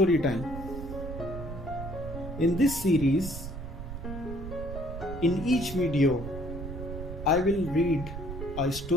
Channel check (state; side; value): noise; right; rumble, 8 dB below the sound